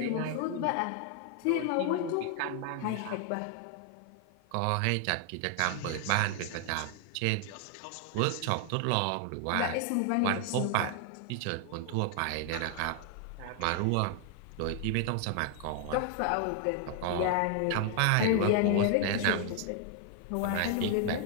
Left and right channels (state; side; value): different; both; correlation 0.00